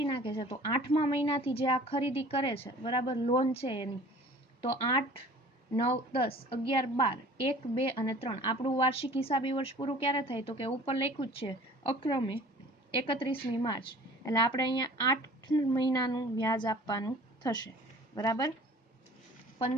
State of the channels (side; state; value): both; normal; correlation 0.47